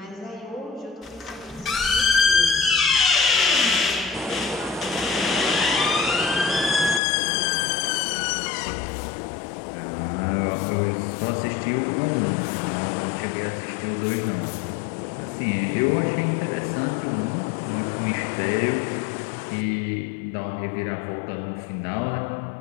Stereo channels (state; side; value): drops out; right; at 7.0 s